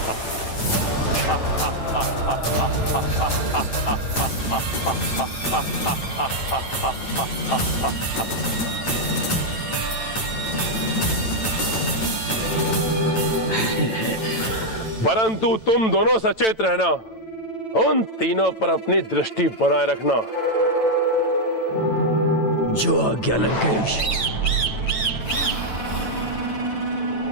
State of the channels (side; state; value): right; late; 9.0 ms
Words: परंतु तुम दोनों सचेत रहना, उन तीनों पर अपनी दृष्टि बनाए रखना। जो आज्ञा लंकेश।